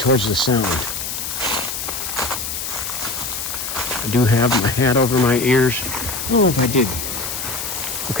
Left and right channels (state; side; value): noise; left; hiss, 5 dB below the sound